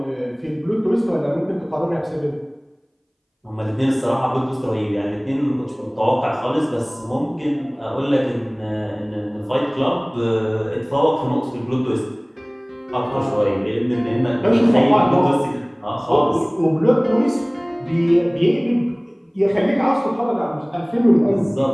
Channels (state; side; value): identical; both; correlation 1.00